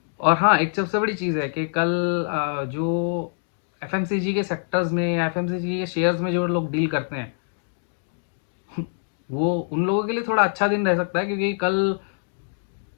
और हाँ, एक सबसे बड़ी चीज़ है कि कल जो एफएमसीजी के सेक्टर्स में या एफएमसीजी के शेयर्स में जो लोग डील करते हैं वो उन लोगों के लिए थोड़ा अच्छा दिन रह सकता है, क्योंकि कल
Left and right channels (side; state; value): right; silent; digital silence